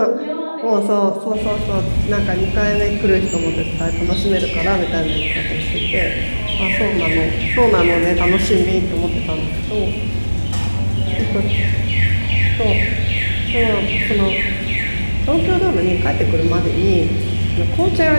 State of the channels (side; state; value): both; inverted; correlation -1.00